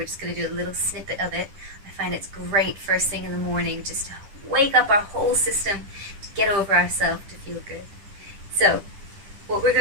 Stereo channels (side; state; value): left; late; 10 ms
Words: just going to do a little snippet of it. I find it's great first thing in the morning just to wake up our whole system, to get over ourselves, to feel good. So, what we're